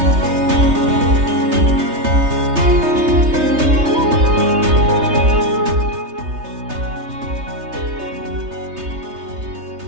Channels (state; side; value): late; left; 3.3 ms